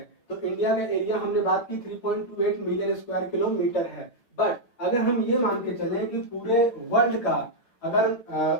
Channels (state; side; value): late; right; 8.4 ms